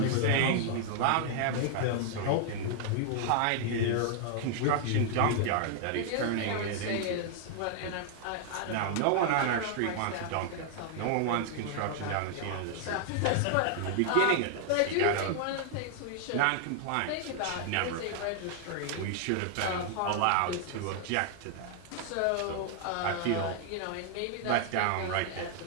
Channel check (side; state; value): both; different; correlation 0.00